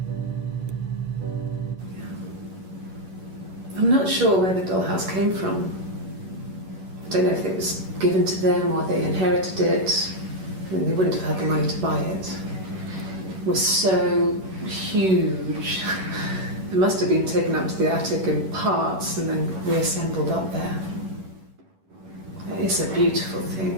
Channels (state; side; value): late; left; 11 ms